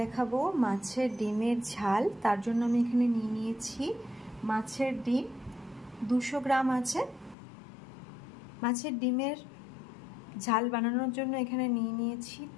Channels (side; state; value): right; drops out; at 7.4 s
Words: দেখাবো মাছের ডিমের ঝাল। তার জন্য আমি এখানে নিয়ে নিয়েছি মাছের ডিম 200 গ্রাম আছে। মাছের ডিমের ঝাল বানানোর জন্য এখানে নিয়ে নিয়েছি